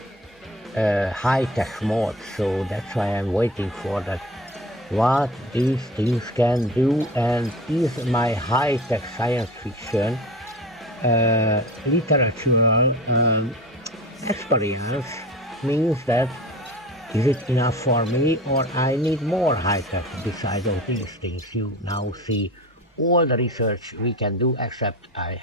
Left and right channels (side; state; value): both; normal; correlation 0.36